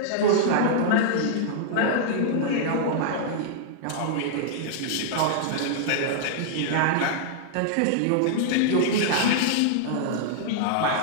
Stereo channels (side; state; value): both; different; correlation -0.01